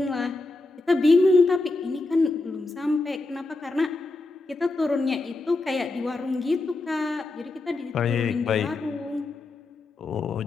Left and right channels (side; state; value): right; quieter; 3.2 dB